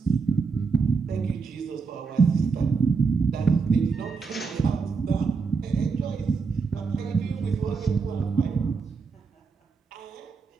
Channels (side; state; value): left; quieter; 5.0 dB